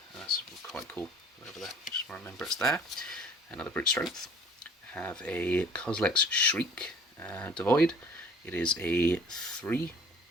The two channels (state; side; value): normal; both; correlation 0.51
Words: That's quite cool. Over there. Just remember it's there. Another Brute Strength. Have a Kozilek's Shriek Devoid. It is a 3.